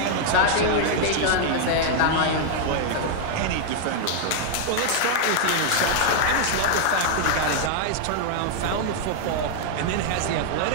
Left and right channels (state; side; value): different; both; correlation 0.00